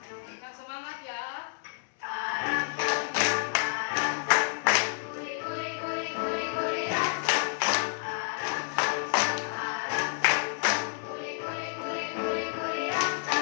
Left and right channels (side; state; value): right; silent; digital silence